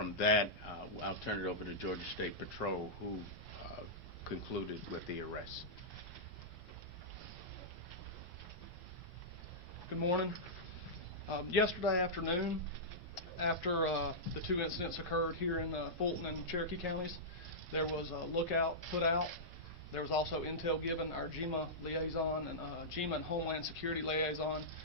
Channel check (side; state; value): both; normal; correlation -0.13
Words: that, I'll turn it over to Georgia State Patrol, who concluded with the arrest. Good morning. Yesterday afternoon, after the two incidents occurred here in Fulton and Cherokee counties, there was a lookout put out. There was also intel given. Our GEMA liaison and GEMA and Homeland Security liaison